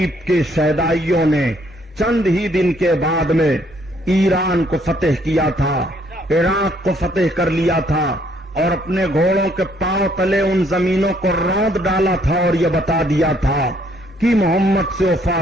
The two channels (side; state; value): both; normal; correlation 0.67